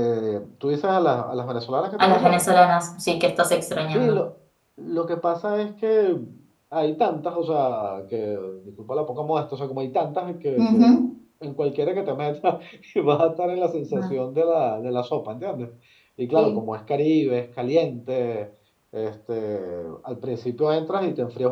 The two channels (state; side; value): identical; both; correlation 1.00